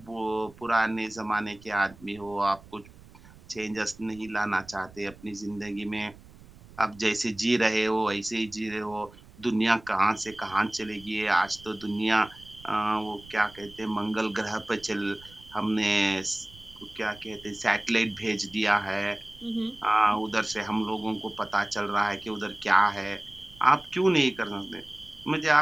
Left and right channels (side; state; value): right; noise; rumble, 22 dB below the sound